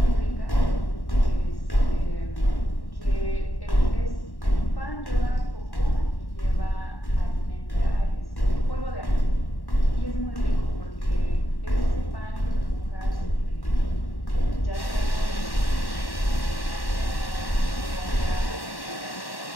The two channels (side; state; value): right; late; 1.1 ms